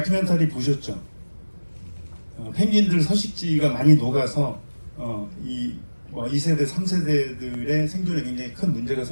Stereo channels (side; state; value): both; inverted; correlation -1.00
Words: 보셨죠? 펭귄들 서식지가 많이 녹아서 이 2세대, 3세대들의 생존에 굉장히 큰 문제가